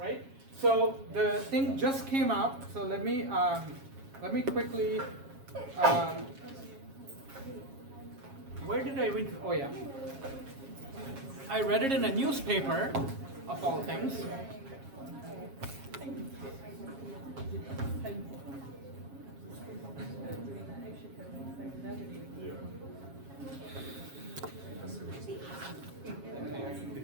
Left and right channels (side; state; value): left; late; 7.4 ms